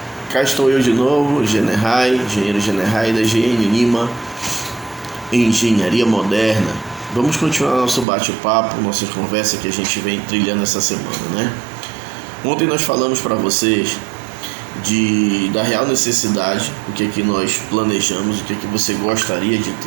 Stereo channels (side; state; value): left; drops out; at 8.1 s